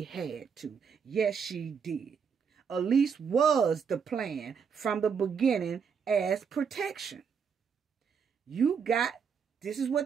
had to. Yes, she did. Alysse was the plan from the beginning as protection. This is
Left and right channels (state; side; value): quieter; left; 6.5 dB